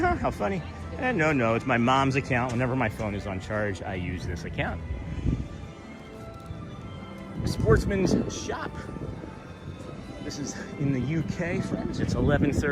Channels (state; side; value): identical; both; correlation 1.00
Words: how funny. And no, it's my mom's account. Whenever my phone is on charge, I use this account. Sportsman's Shop. This is in the UK, friends. It's